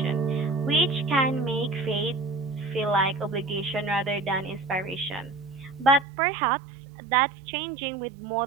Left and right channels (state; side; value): drops out; left; at 6.1 s